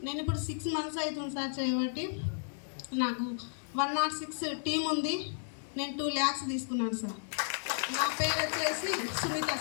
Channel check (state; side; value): silent; right; digital silence